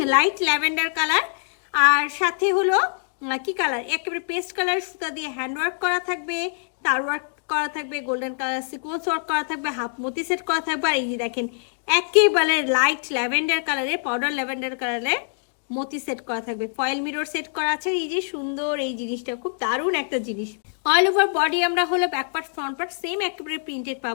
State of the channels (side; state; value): right; silent; digital silence